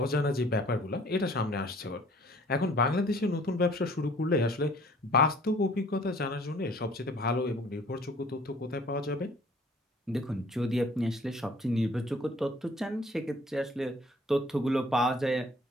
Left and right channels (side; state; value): both; normal; correlation 0.54